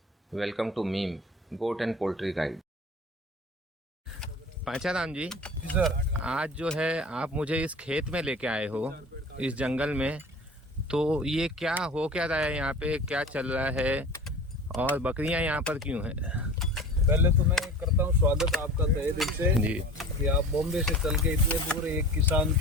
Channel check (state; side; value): normal; both; correlation 0.39